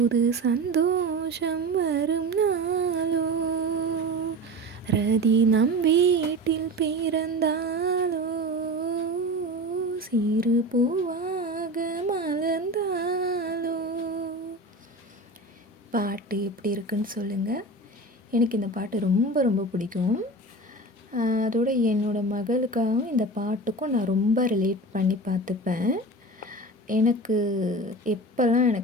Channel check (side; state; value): both; normal; correlation 0.31